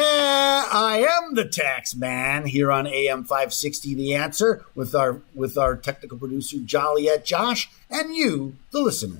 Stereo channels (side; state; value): right; quieter; 35.5 dB